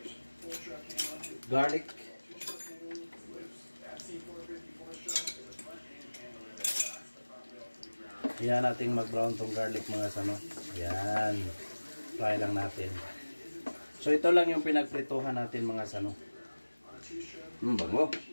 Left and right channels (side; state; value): both; inverted; correlation -1.00